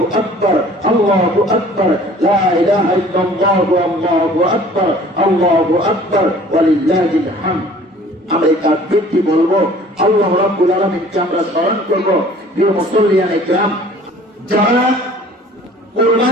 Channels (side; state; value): both; normal; correlation 0.50